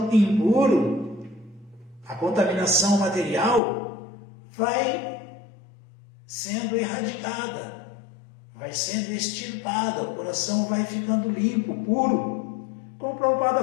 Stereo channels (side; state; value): right; drops out; at 3.6 s